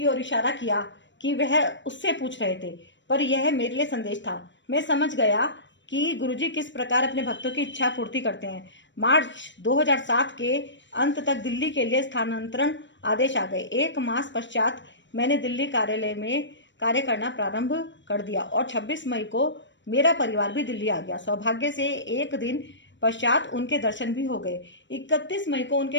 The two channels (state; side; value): late; right; 0.53 ms